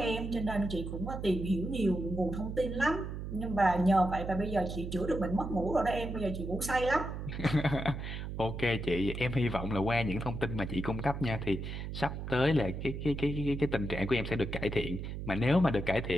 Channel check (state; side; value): noise; right; hum, 6 dB below the sound